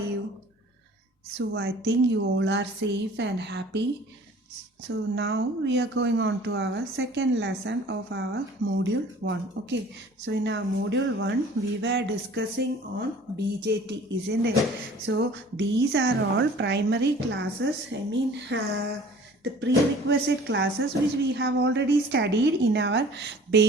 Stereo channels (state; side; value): normal; both; correlation 0.49